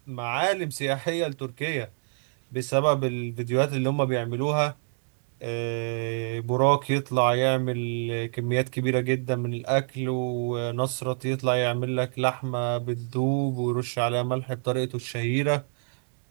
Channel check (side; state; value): left; silent; digital silence